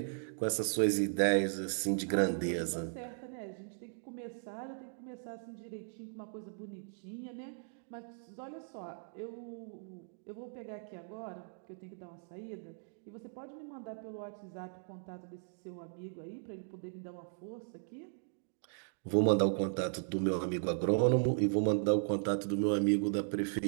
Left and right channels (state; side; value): silent; left; digital silence